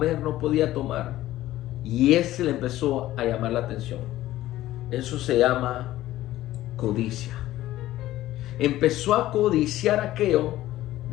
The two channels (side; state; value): right; quieter; 15.0 dB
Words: no podía tomar. Y ese le empezó a llamar la atención. Eso se llama codicia. Empezó a codiciar aquello